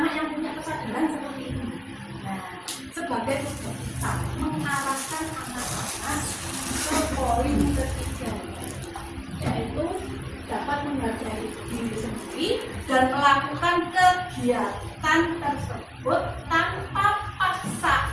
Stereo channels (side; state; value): both; identical; correlation 1.00